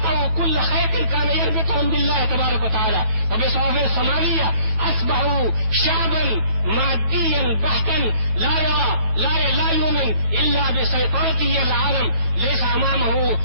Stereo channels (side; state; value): left; late; 9.1 ms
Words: كل خيط كان يربطهم بالله تبارك وتعالى، وبصوابه الصومالية أصبحوا شعبا ماديا بحتا لا يؤمن إلا بسيطرته العالم. ليس أمامه